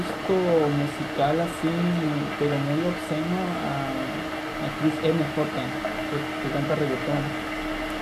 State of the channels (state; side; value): identical; both; correlation 1.00